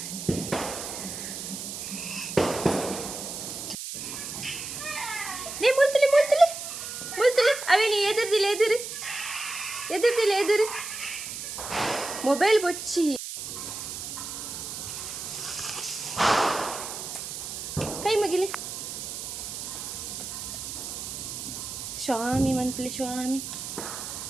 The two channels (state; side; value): noise; right; hiss, 7 dB below the sound